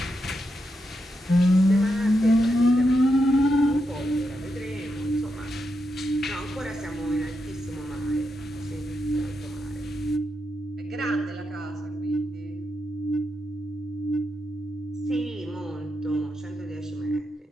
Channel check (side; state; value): both; normal; correlation 0.84